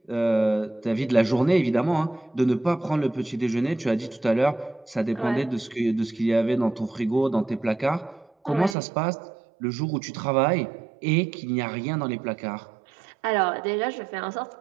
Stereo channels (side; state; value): left; drops out; at 8.8 s